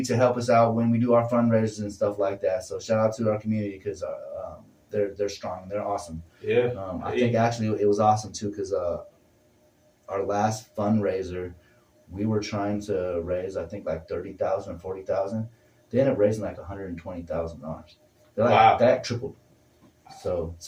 to help us out when we do our fundraisers and stuff like that. So shout out to our community because they're strong, they're awesome. Yeah. I think actually it was awesome too because our last fundraiser, we were trying to raise I think like $30,000 or $40,000. They ended up raising like $120,000. Like, that tripled. So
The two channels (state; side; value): identical; both; correlation 1.00